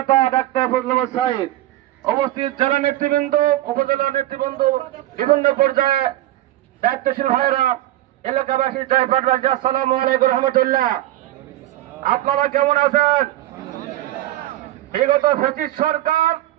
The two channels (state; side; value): quieter; left; 15.1 dB